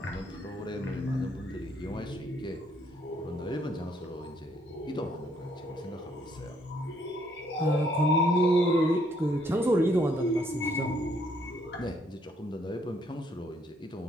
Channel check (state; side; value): normal; both; correlation 0.68